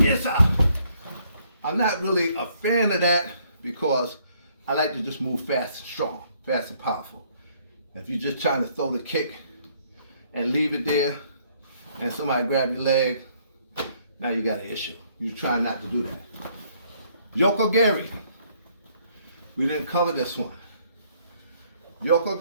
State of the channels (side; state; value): both; inverted; correlation -0.66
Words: Yes, sir. I'm not really a fan of that because I like to just move fast and strong, fast and powerful. If you're just trying to throw the kick and leave it there, and somebody grab your leg, now you got an issue. You're trying not to do that. Yoko Gary. We didn't cover this one. Yoko